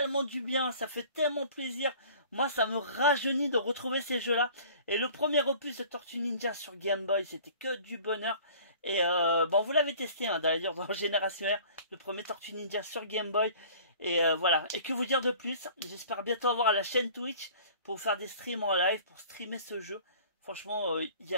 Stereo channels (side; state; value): both; inverted; correlation -0.47